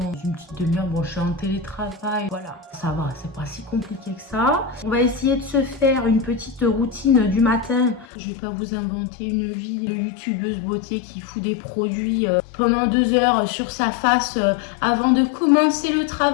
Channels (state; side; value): drops out; right; at 8.1 s